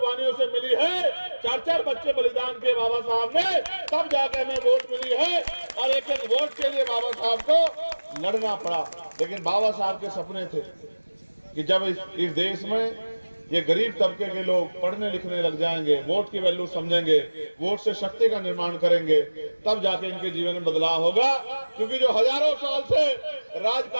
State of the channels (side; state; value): both; inverted; correlation -1.00